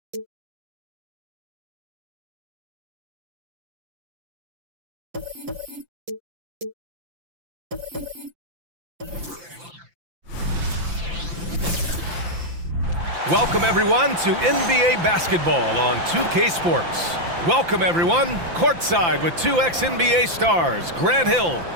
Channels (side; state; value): left; late; 5.8 ms